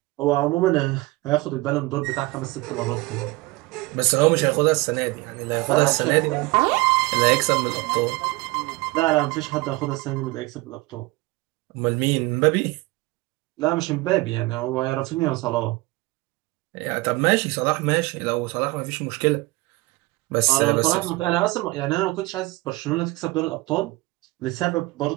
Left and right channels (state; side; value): quieter; left; 21.8 dB